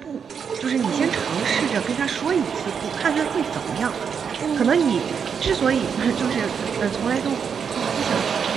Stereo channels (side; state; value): left; quieter; 6.8 dB